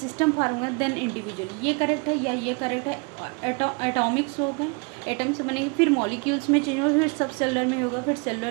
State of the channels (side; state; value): left; quieter; 32.5 dB